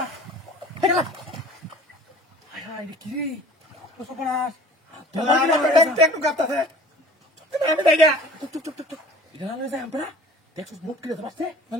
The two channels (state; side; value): normal; both; correlation 0.47